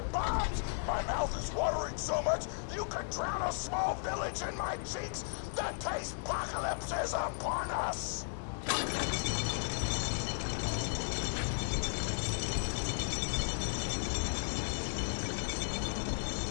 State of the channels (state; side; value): silent; right; 54 dB below the other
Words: bombs. My mouth is watering so much you could drown a small village in my cheeks. The taste apocalypse is upon us.